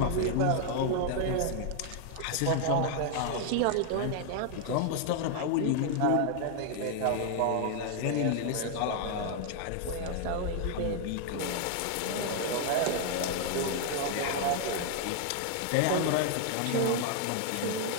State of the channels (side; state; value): both; different; correlation 0.00